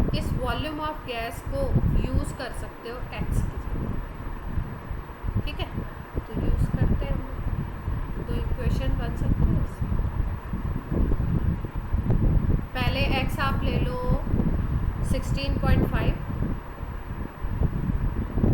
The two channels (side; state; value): both; identical; correlation 1.00